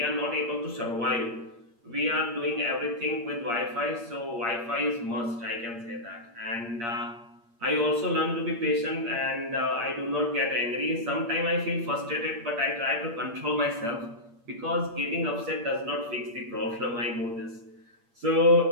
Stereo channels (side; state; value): left; late; 8.6 ms